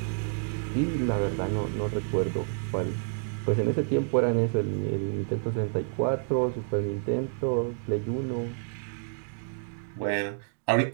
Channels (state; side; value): silent; left; 59 dB below the other